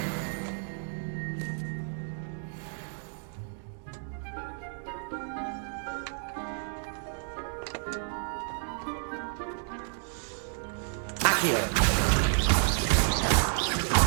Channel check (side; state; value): left; silent; 57 dB below the other